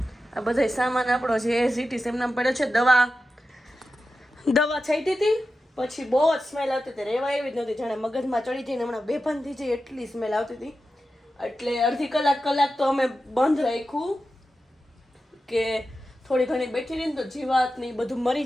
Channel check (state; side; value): normal; both; correlation 0.92